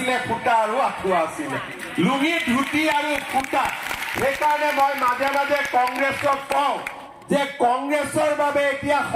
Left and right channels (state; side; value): identical; both; correlation 1.00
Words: ফুটা আৰু আঁঠুৱা আছিলে লুঙি ধুতি আৰু ফুটা সেইকাৰণে মই মাজে মাজে কংগ্ৰেছক কওঁ যে কংগ্ৰেছৰ বাবে এতিয়া